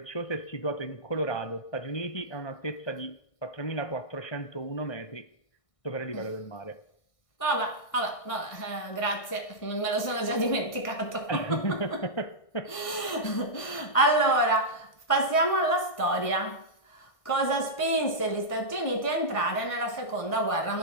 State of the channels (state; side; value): late; right; 1.5 ms